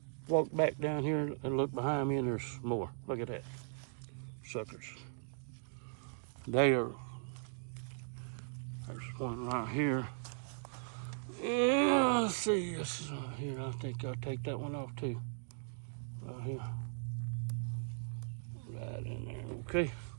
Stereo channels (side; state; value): left; silent; digital silence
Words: walked back down here and looked behind me and there's more. Look at that, suckers. There's one right here. Yeah, let's see, this is right here. I think I'll take that one off too. Right here. Right in there, okay.